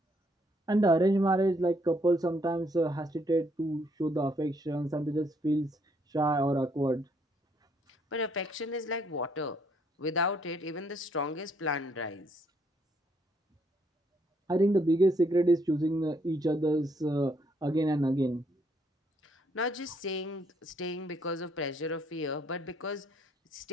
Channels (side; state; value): both; normal; correlation 0.69